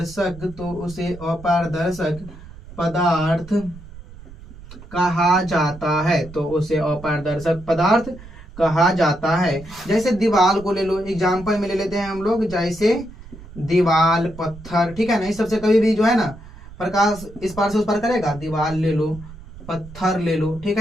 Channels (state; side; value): noise; right; rumble, 17 dB below the sound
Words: अपारदर्शक पदार्थ कहा जाता है। तो उसे अपारदर्शक पदार्थ कहा जाता है। जैसे दीवाल को ले लो, एग्जाम्पल में ले लेते हैं हम लोग, जैसे दीवाल, पत्थर। ठीक है ना, इस सबसे कभी भी जो है ना प्रकाश इस पार से उस पार करेगा। दीवाल ले लो, पत्थर ले लो, ठीक